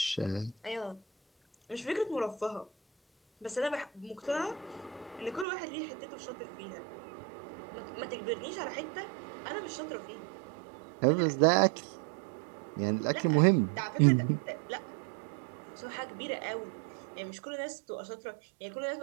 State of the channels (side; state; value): left; drops out; at 5.5 s